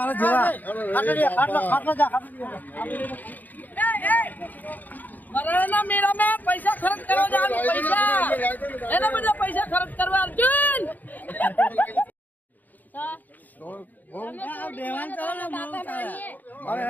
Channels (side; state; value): right; late; 0.083 ms